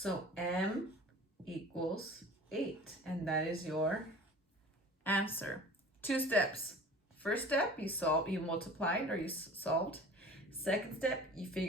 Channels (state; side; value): normal; both; correlation 0.42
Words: m equals 8. And that is your answer. 2 steps. First step, you multiplied or you solved. Second step, you